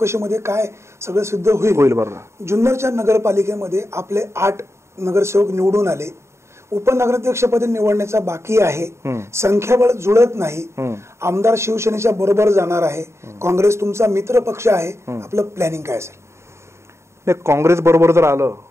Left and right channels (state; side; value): late; left; 0.13 ms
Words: काय सगळं सिद्ध होईल. बरोबर. जुन्नरच्या नगरपालिकेमध्ये आपले 8 नगरसेवक निवडून आले, उपनगराध्यक्षपदी निवडण्याचा बाकी आहे, संख्याबळ जुळत नाही, आमदार शिवसेनेच्या बरोबर जाणार आहे, काँग्रेस तुमचा मित्र पक्ष आहे, आपलं प्लॅनिंग काय असेल? नाही, काँग्रेस बरोबर जर आलं